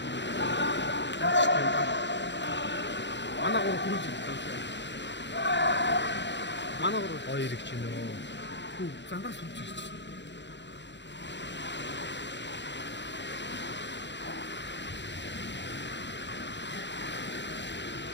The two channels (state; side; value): late; right; 0.52 ms